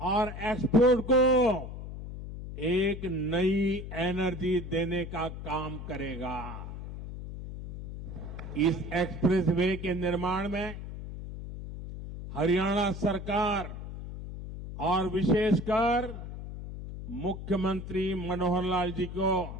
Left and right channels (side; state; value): left; noise; hum, 9 dB below the sound